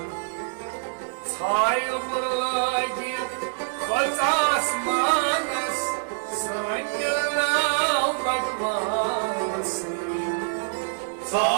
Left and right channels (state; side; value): silent; left; digital silence